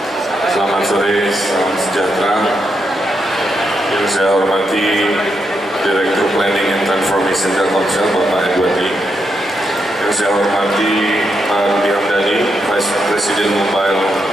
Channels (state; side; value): normal; both; correlation 0.82